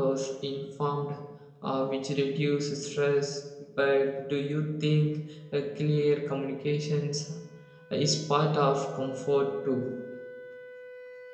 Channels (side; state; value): both; identical; correlation 1.00